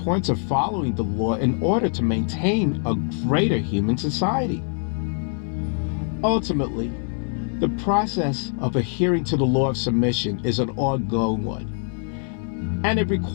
of following the law in order to maintain a greater human society. Ultimately, the process of adhering to the law of submission is an ongoing one, and it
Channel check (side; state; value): right; silent; 55 dB below the other